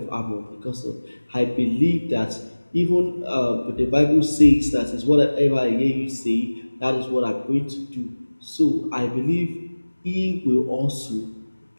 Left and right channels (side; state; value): both; inverted; correlation -1.00